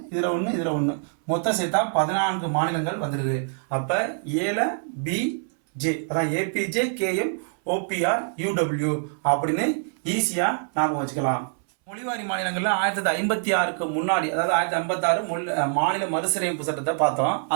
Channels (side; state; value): left; silent; 62 dB below the other